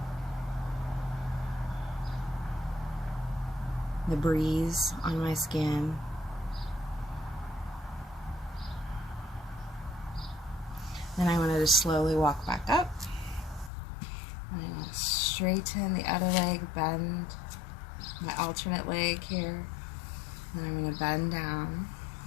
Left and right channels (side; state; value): right; drops out; at 13.7 s